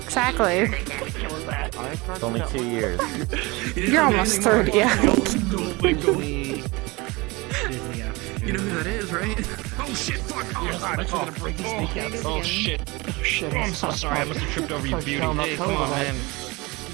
Exactly. It's only 2 years. You're almost 30, yeah. You know who that is, right? Oh shit, fuck! Oh god, oh shit. Oh shit, I'm so sorry, I must have tripped over your beauty. Hey, come on, man.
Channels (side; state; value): left; quieter; 24.2 dB